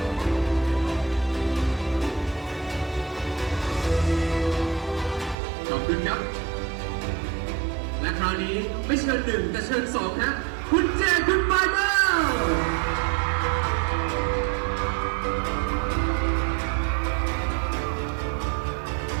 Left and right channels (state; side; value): drops out; left; at 5.4 s